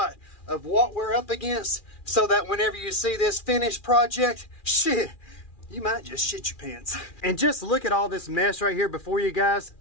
of what we're up against so that whenever you see this finished project, shit, you might just shit your pants. And just look at all this mess right here before you guys.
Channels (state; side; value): late; right; 2.4 ms